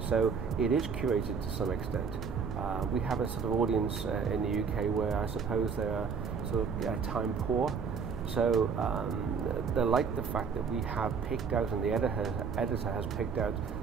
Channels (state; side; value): quieter; left; 5.9 dB